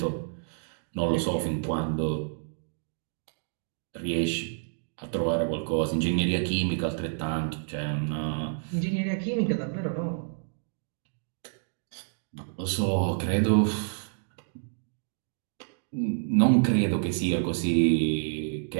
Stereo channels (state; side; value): silent; left; digital silence